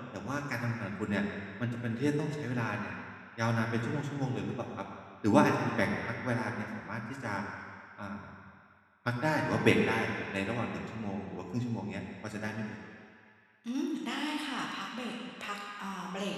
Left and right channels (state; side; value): identical; both; correlation 1.00